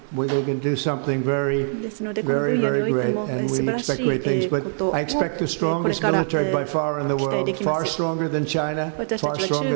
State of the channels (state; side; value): silent; left; digital silence